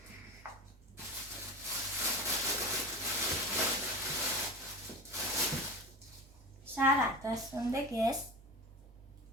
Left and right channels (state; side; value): normal; both; correlation 0.29